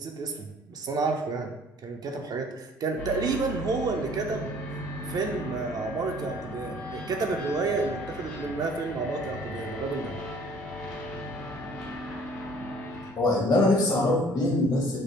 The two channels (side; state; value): both; normal; correlation 0.54